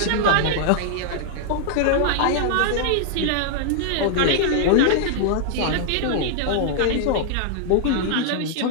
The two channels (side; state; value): both; different; correlation -0.01